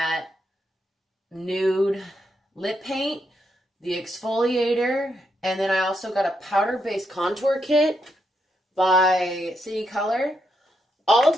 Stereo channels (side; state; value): both; normal; correlation 0.80